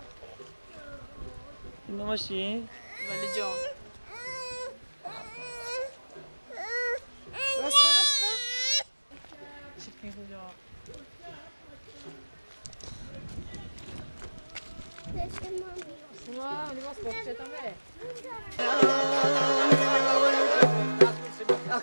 این ماشین ولی جان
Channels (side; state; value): both; inverted; correlation -1.00